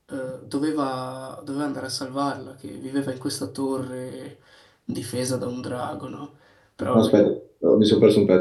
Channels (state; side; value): identical; both; correlation 1.00